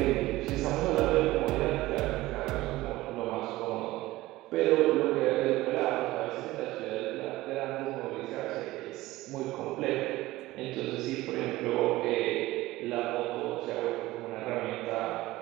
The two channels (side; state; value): left; quieter; 18.0 dB